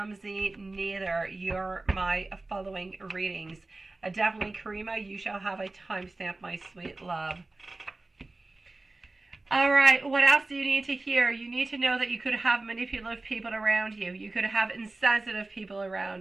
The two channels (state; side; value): quieter; left; 3.1 dB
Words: neither. You're my following readings. Definitely, Karima, you shall have a timestamp, my sweet love. All right, what else do you need to hear? You need to know that you could have manipulative people around you. You could have insensitive people